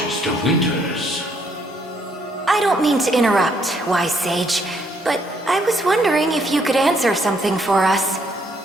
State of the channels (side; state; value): both; normal; correlation 0.70